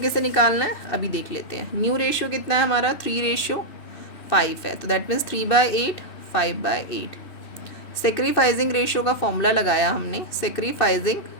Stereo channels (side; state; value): right; late; 2.6 ms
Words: निकालना है, अभी देख लेते हैं। न्यू रेशियो कितना है हमारा, 3:5 है, तो दैट मीन्स 3/8 5/8। सेक्रीफाइजिंग रेशियो का फॉर्मूला लगाया हमने, सेक्रीफाइजिंग